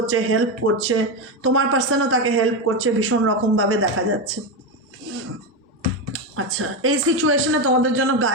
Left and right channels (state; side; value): normal; both; correlation 0.12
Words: হেল্প করছে। তোমার পার্সনও তাকে হেল্প করছে ভীষণ রকমভাবে দেখা যাচ্ছে। আচ্ছা, এই সিচুয়েশনে তোমাদের জন্য